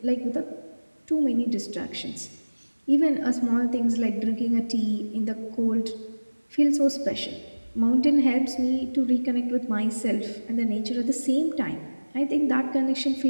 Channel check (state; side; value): inverted; both; correlation -1.00